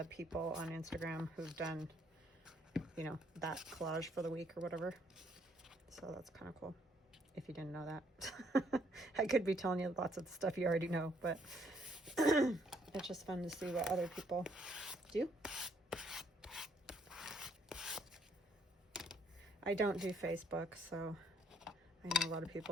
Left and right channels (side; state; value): both; normal; correlation 0.67